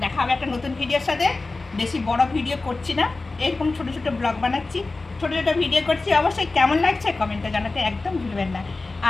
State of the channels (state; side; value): quieter; right; 3.5 dB